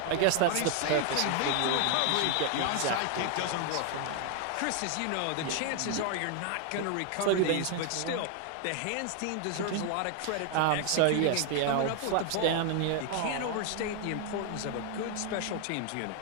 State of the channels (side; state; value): both; different; correlation 0.00